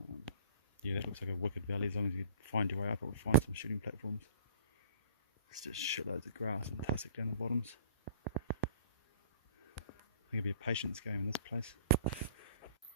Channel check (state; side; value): inverted; both; correlation -0.47